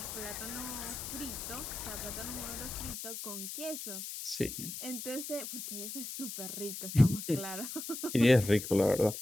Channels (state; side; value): noise; left; hiss, 7 dB below the sound